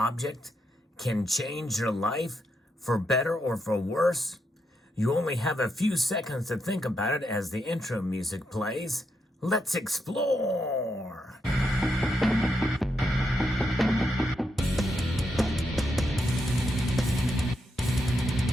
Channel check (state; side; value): normal; both; correlation 0.82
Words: can change your life for better or for worse? You only have a few seconds to think about it as the intro music plays. Let's explore!